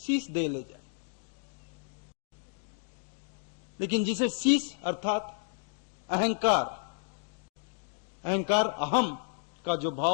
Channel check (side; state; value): right; silent; digital silence